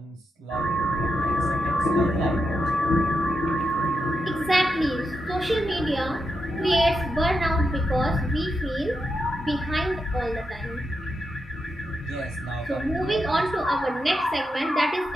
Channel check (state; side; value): normal; both; correlation 0.86